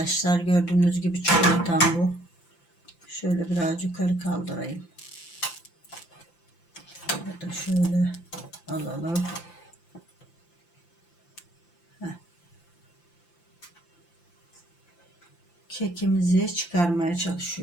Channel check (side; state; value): right; late; 5.8 ms